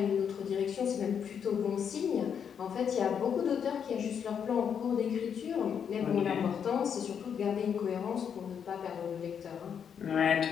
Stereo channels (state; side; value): quieter; right; 7.6 dB